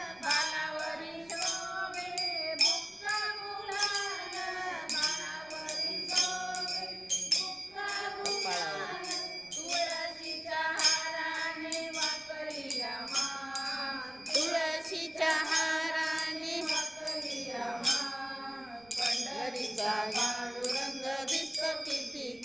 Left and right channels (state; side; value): noise; right; rumble, 26 dB below the sound